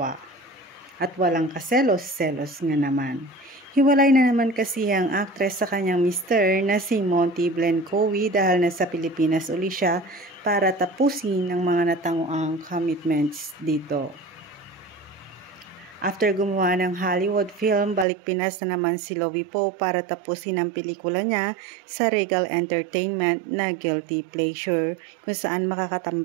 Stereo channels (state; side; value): drops out; left; at 18.1 s